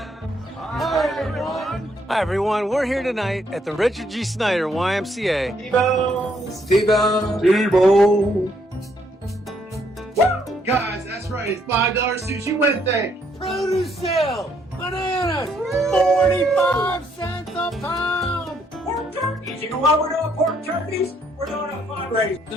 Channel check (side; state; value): both; normal; correlation 0.70